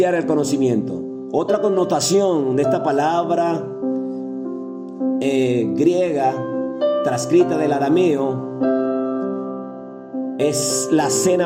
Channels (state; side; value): identical; both; correlation 1.00